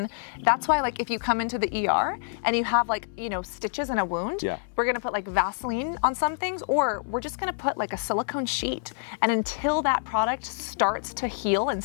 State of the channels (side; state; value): right; silent; digital silence